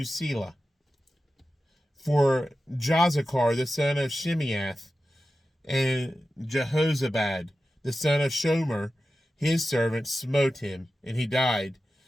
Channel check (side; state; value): both; normal; correlation 0.93